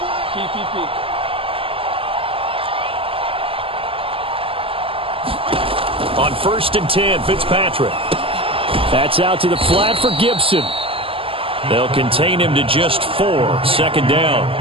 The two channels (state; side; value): late; left; 0.26 ms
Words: Keep. On 1st and 10, Fitzpatrick. That's out to the flat for Gibson. They'll contain him to just 4. Second down.